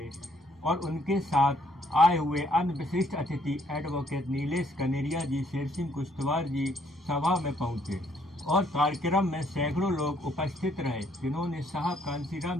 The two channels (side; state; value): both; normal; correlation 0.67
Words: और उनके साथ आए हुए अन्य विशिष्ट अतिथि एडवोकेट नीलेश कनेरिया जी, शेर सिंह कुश्तवार जी सभा में पहुंचे और कार्यक्रम में सैकड़ों लोग उपस्थित रहे, जिन्होंने साहब कांसीराम